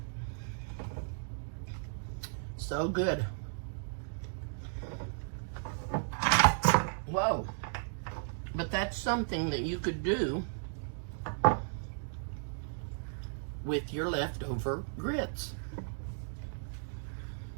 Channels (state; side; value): silent; left; digital silence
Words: So good. Whoa. But that's something that you could do with your leftover grits.